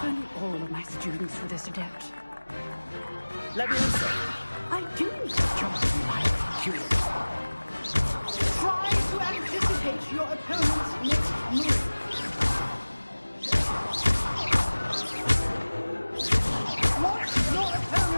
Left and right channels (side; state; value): both; inverted; correlation -1.00